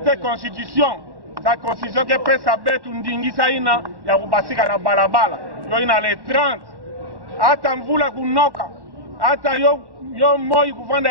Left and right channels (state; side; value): late; left; 1.1 ms